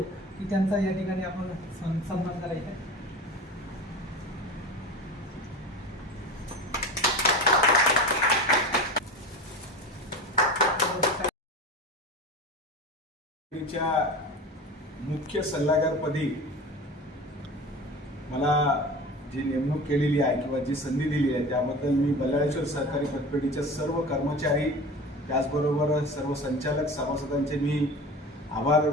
की त्यांचा या ठिकाणी आपण सन्मान करायचा. मुख्य सल्लागारपदी मला जी नेमणूक केलेली आहे किंवा जी संधी दिली आहे त्याबद्दल मी बल्लाळेश्वर सहकारी पतपेढीच्या सर्व कर्मचारी त्याचबरोबर सर्व संचालक सभासदांचे मी आभार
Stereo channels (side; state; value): both; normal; correlation 0.33